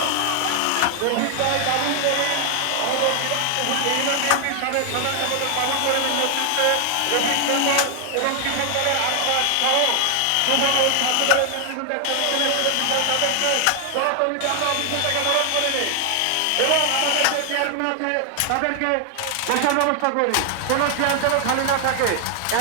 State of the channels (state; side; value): different; both; correlation 0.00